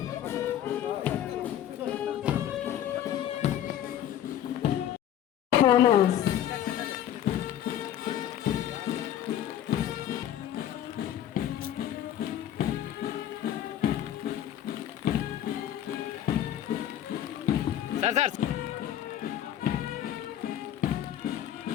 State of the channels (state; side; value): quieter; right; 11.1 dB